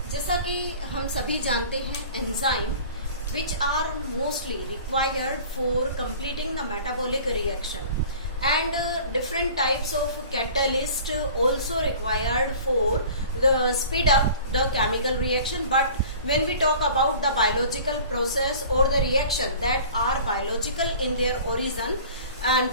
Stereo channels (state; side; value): inverted; both; correlation -0.44